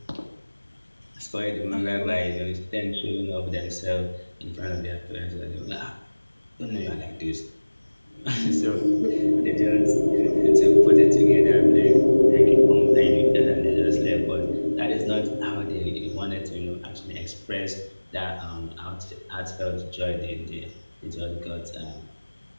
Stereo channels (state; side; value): inverted; both; correlation -1.00